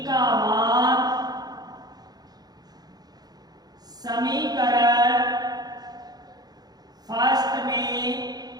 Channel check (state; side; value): late; left; 0.19 ms